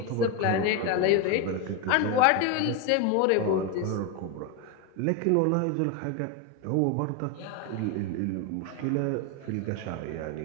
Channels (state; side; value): different; both; correlation 0.02